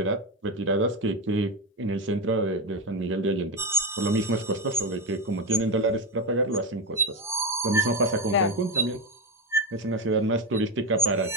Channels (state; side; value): normal; both; correlation 0.14